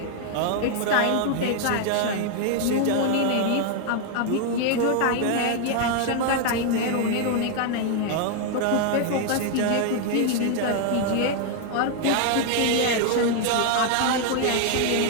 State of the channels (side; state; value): both; different; correlation 0.00